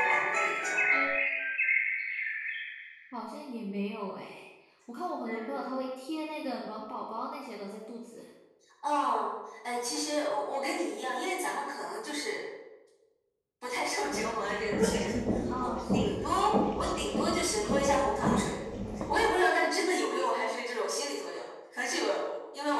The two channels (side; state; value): both; identical; correlation 1.00